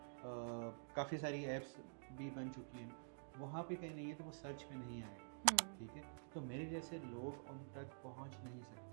काफ़ी सारी ऐप्स भी बन चुकी हैं वहाँ पे कहीं नहीं है, तो वो सर्च पे नहीं आए, ठीक है, तो मेरे जैसे लोग उन तक पहुँच नहीं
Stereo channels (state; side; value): silent; left; digital silence